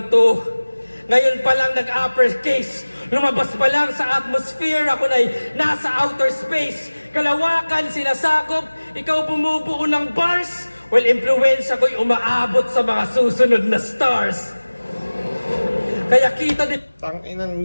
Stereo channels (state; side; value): inverted; both; correlation -1.00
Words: to. Ngayon pa lang nag-uppercase. Lumabas pa lang sa atmosphere, ako na'y nasa outer space. Kalawakan, sinasakop, ikaw bumubuo ng bars. Well, influensya ko'y umaabot sa mga susunod na stars. Kaya kita din... Tanginan